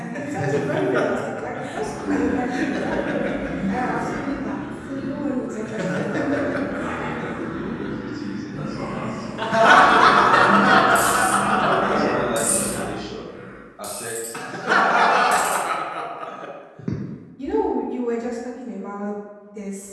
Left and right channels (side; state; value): both; identical; correlation 1.00